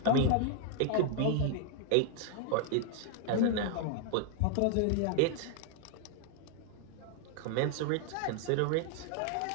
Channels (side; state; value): both; different; correlation 0.00